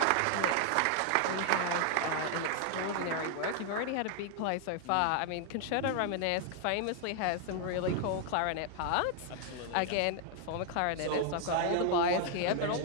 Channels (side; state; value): both; different; correlation 0.00